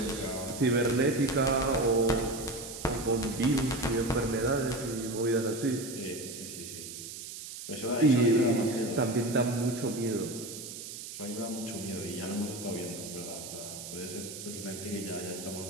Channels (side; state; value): right; noise; hiss, 10 dB below the sound